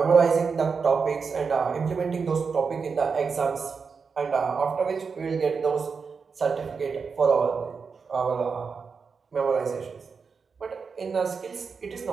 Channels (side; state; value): left; quieter; 5.4 dB